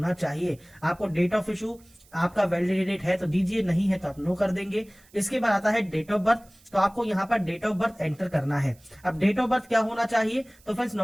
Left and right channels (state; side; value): noise; right; hiss, 28 dB below the sound